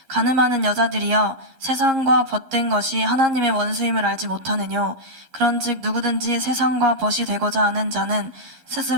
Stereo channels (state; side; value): late; left; 11 ms